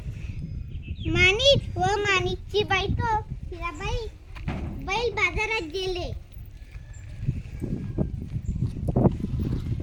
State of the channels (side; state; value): both; identical; correlation 1.00